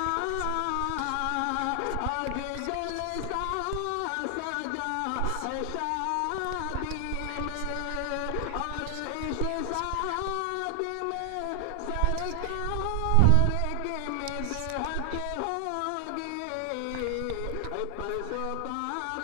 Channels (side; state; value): both; different; correlation 0.00